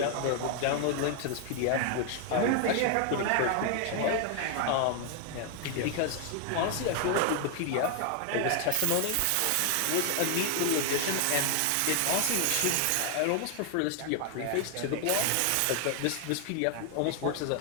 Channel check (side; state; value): both; different; correlation 0.00